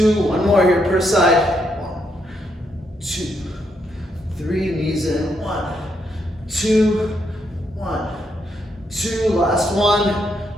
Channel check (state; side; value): normal; both; correlation 0.77